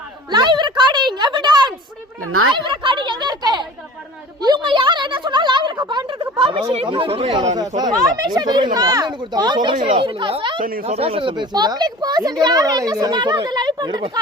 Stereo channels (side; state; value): both; normal; correlation 0.41